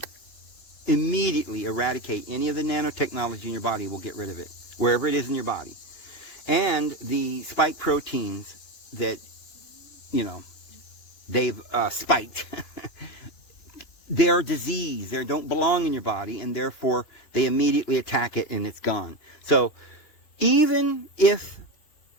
immediately eradicate any of the nanotechnology in your body. Will get rid of it, wherever it is in your body. And the spike proteins that, they've spiked, they're disease. They don't belong in your body, and therefore they immediately attack it and it's gone. So even if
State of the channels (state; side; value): late; right; 3.1 ms